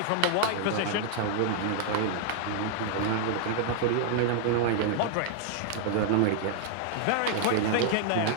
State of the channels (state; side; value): different; both; correlation 0.00